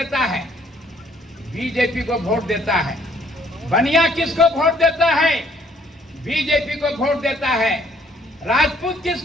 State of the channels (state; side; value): normal; both; correlation 0.63